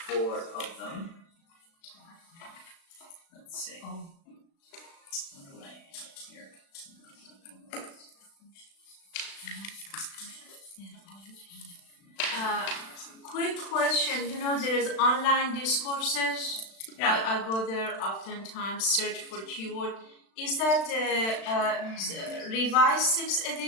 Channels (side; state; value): right; late; 36 ms